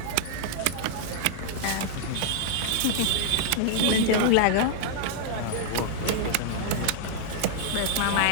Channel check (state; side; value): different; both; correlation -0.01